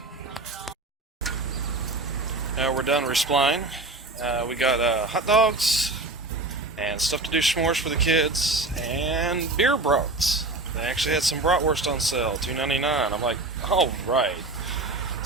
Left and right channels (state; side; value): quieter; left; 3.2 dB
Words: Now we're done resupplying. We got hot dogs and stuff to do s'mores for the kids and beer brats. They actually had some bratwurst on sale, $2.99. I'm like, all right.